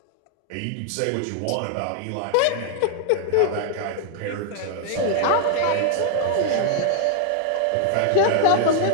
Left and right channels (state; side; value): different; both; correlation 0.00